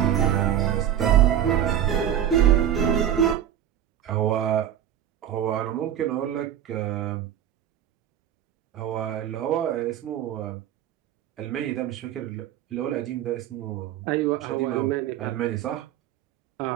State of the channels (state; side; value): quieter; left; 10.6 dB